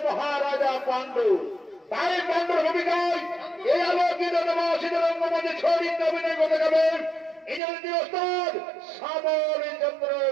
মহারাজা পাণ্ডু তাই পাণ্ডুর ভূমিকায় এই আলোকিত নবাসিত রঙ্গমঞ্চে ছড়িয়ে অভিনয় করতে যাবেন ইংরেজি ওস্তাদ শ্যামল চন্দ্র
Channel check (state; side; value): drops out; left; at 7.6 s